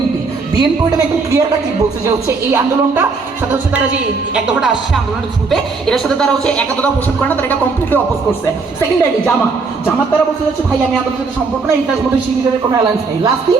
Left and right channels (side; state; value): left; quieter; 4.4 dB